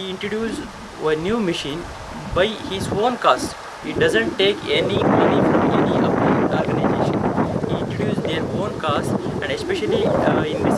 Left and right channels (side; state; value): both; identical; correlation 1.00